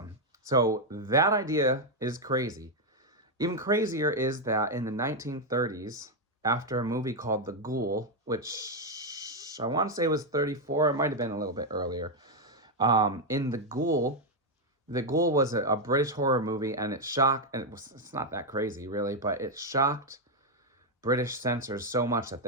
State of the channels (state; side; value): normal; both; correlation 0.02